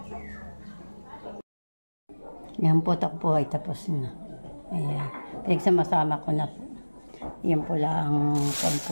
Yan po, takpo ay tapos na. Ayan. Pinagsama-sama ko na po. Yan po lang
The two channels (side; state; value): both; inverted; correlation -1.00